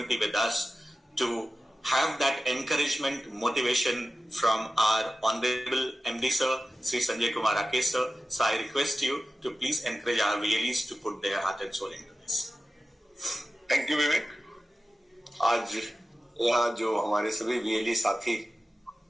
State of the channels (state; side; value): normal; both; correlation 0.94